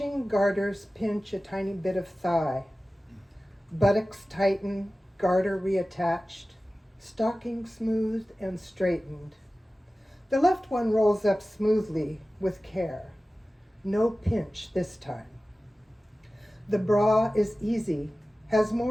garters pinch a tiny bit of thigh. Buttocks tighten, garter reattached, stocking smoothed and straightened. The left one rolls up smoothly with care. No pinch this time. The bra is easy, has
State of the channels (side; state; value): both; normal; correlation 0.96